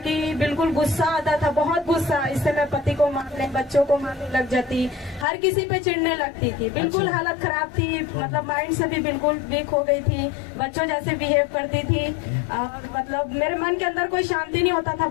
बिल्कुल गुस्सा आता था, बहुत गुस्सा। इससे मैं पति को मारने, बच्चों को मारने लग जाती, हर किसी पे चिढ़ने लगती थी। बिल्कुल अच्छा। हालत खराब थी, मतलब माइंड से भी बिल्कुल वीक हो गई थी, बच्चों जैसे बिहेव करती थी। और मतलब मेरे मन के अंदर कोई शांति नहीं होता था,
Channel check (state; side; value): drops out; right; at 5.2 s